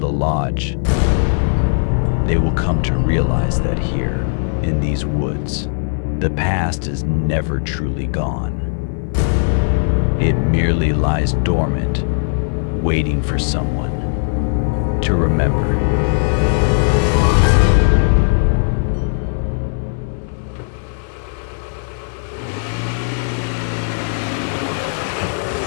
lodge, they will come to realize that here, in these woods, the past is never truly gone. It merely lies dormant, waiting for someone to remember.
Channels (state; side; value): silent; right; 65 dB below the other